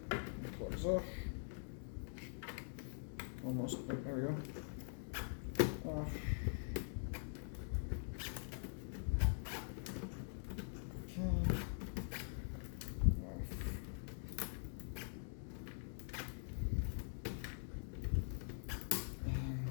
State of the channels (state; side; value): silent; right; digital silence